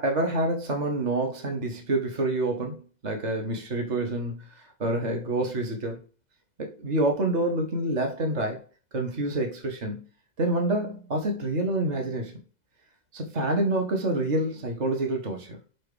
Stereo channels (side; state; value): left; late; 2.0 ms